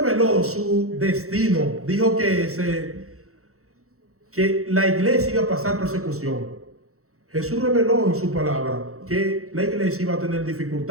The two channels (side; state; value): left; late; 0.64 ms